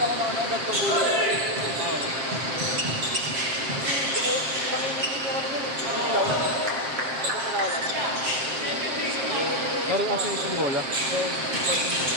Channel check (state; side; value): late; left; 7.5 ms